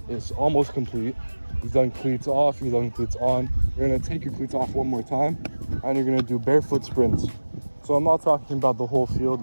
is almost complete, you've done cleats off, you've done cleats on, you're gonna take your cleats off one more time, and you're gonna do barefoot sprints. So I'm not talking about the whole field,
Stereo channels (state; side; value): inverted; both; correlation -1.00